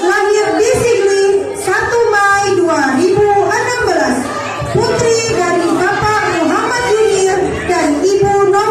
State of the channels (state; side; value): identical; both; correlation 1.00